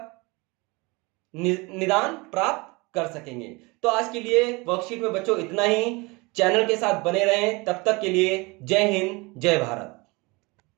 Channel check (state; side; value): quieter; left; 25.9 dB